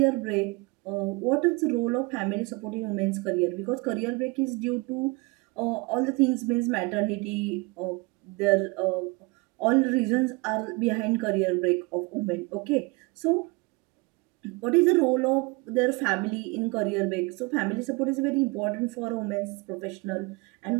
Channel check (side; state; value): left; quieter; 26.0 dB